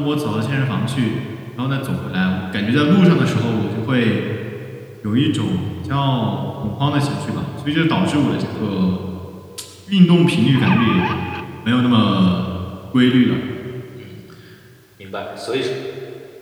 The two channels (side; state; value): both; identical; correlation 1.00